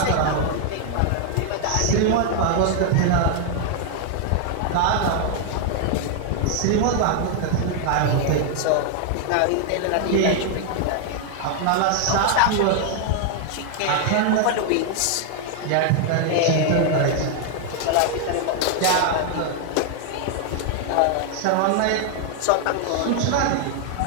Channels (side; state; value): both; different; correlation 0.00